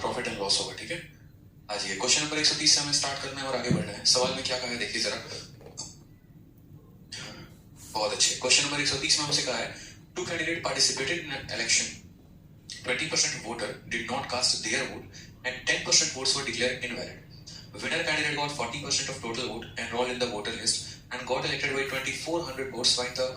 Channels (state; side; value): identical; both; correlation 1.00